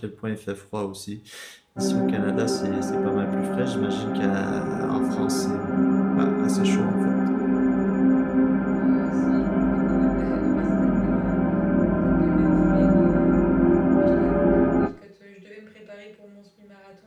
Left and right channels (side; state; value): both; identical; correlation 1.00